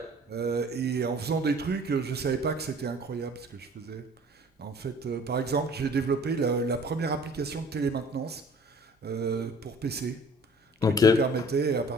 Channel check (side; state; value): both; normal; correlation 0.50